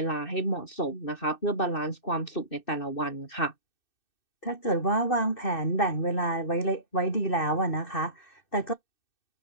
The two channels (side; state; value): right; late; 2.6 ms